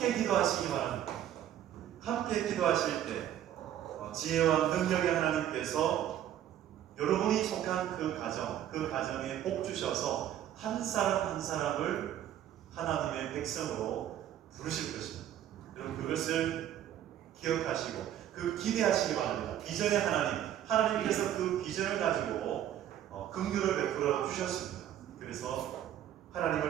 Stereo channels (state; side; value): quieter; left; 11.2 dB